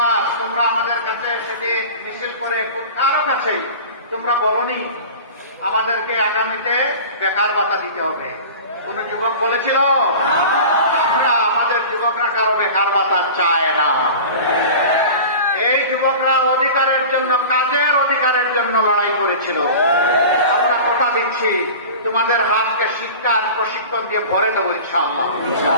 তোমরা আমাদের কাছে সেদিন মিছিল করে কারো কাছেই তোমরা বলনি আমাদেরকে আগামীতে বেকার ভাতা দিতে হবে। কোন যুবক বলেছিল? আমরা আমাদের যুবকরা কারো বেকার ভাতা চায় না। এই যুবকরা অধিকারের জন্য, কাজের অধিকারের জন্য লড়াই করেছিল। আমরা কথা দিচ্ছি তোমাদের হাতকে শিক্ষার প্রশিক্ষণ দিয়ে ভরে দেবো ইনশাআল্লাহ।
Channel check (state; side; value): inverted; both; correlation -0.36